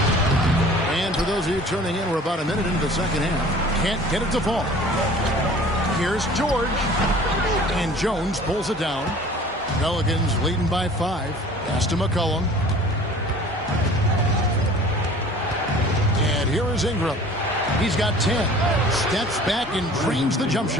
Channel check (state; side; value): normal; both; correlation 0.47